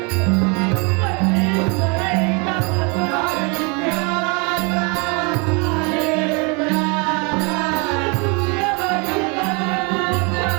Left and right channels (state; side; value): quieter; left; 31.9 dB